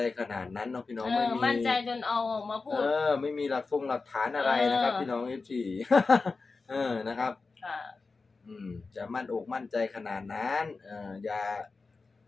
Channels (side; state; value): right; quieter; 4.1 dB